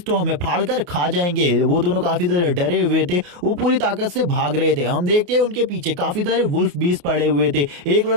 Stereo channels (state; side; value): late; left; 28 ms